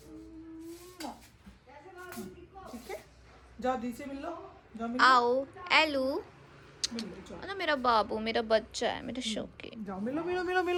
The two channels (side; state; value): both; identical; correlation 1.00